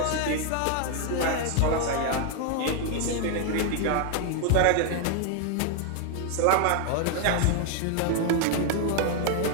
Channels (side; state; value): both; different; correlation 0.00